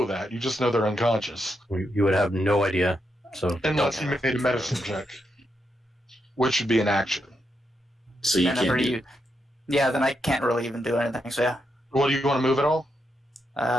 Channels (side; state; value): both; normal; correlation 0.82